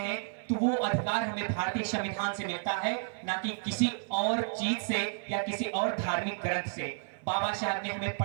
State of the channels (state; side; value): silent; left; 57 dB below the other